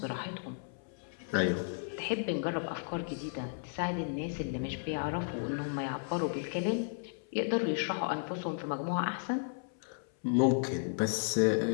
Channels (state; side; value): silent; right; 55 dB below the other